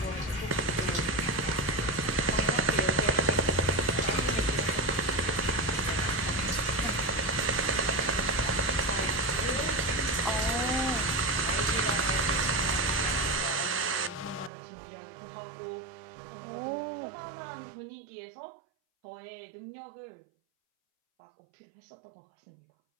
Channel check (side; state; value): left; drops out; at 14.5 s